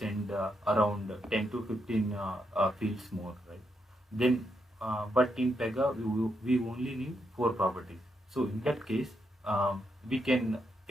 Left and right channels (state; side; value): normal; both; correlation 0.81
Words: around 10 to 15 fields more, right? Then but in Pega we only need four properties. So in that case we can